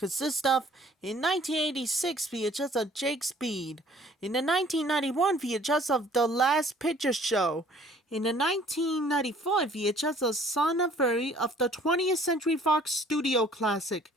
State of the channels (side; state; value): both; normal; correlation 0.55